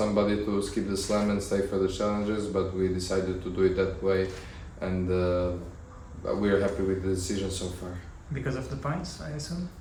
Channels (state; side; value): identical; both; correlation 1.00